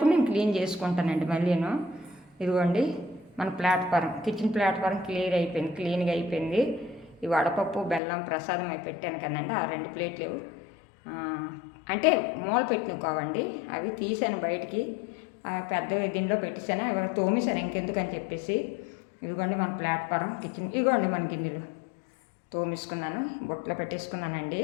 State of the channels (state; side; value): drops out; right; at 8.0 s